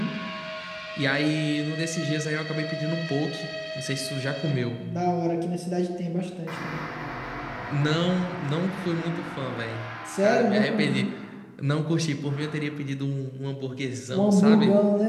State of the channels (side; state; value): both; identical; correlation 1.00